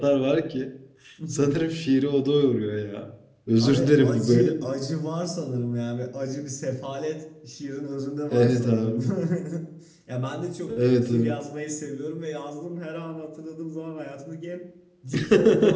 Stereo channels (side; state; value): both; identical; correlation 1.00